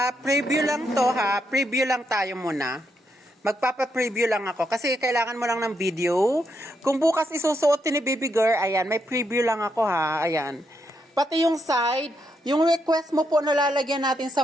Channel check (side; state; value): both; normal; correlation 0.80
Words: Preview lang to ha. Preview lang tayo muna. Magpapa-preview lang ako kasi kailangan mo lang ng video. Kung bukas isusuot ni baby girl, ayan, may preview lang ako ha. Ayan. Pati yung side, yung request mo po nalalagyan natin sa